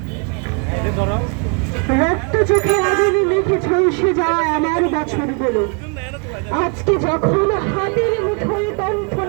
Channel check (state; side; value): quieter; left; 36.1 dB